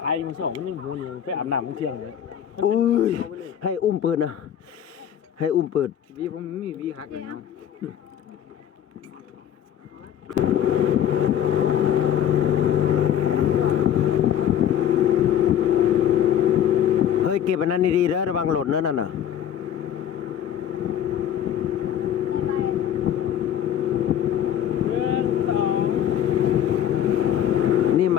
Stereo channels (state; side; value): quieter; right; 10.0 dB